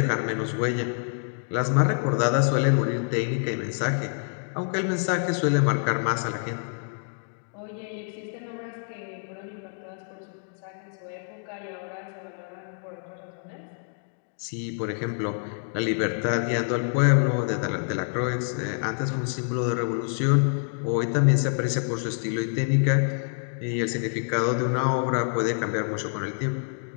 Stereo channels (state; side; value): silent; right; 60 dB below the other